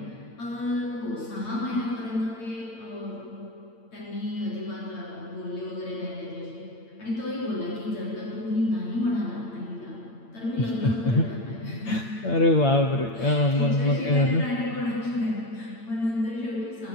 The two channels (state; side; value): late; right; 8.8 ms